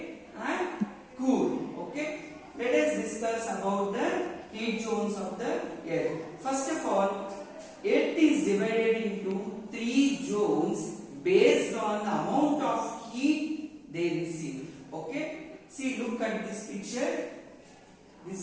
and cool. Okay, let us discuss about the heat zones of the earth. First of all, earth is divided into three zones based on the amount of heat they receive. Okay, see, look at this picture. This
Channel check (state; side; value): identical; both; correlation 1.00